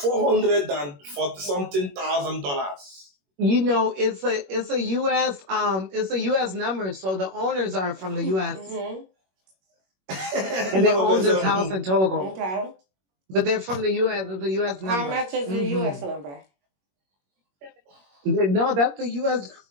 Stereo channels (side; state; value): left; late; 21 ms